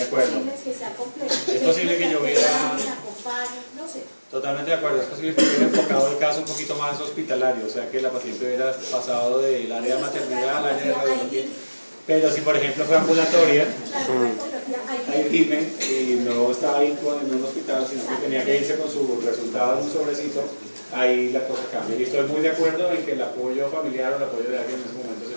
posible que sea complejo. Es posible que yo hubiera... No sé. Totalmente de acuerdo, es posible que hubiera enfocado el caso un poquito más hospitalario, o sea que la paciente hubiera pasado del área de maternidad al área de radiología. Pero si por ejemplo fue ambulatoria, hay IME y no estaba ahí en un hospital, sino que tenía que irse con su resultado en un sobrecito, ahí la cosa cambia. Y estoy muy de acuerdo en que el apoyo familiar o el apoyo de alguien en ese momento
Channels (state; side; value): inverted; both; correlation -1.00